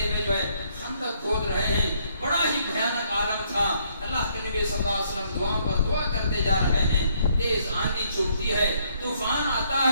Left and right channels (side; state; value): both; inverted; correlation -0.69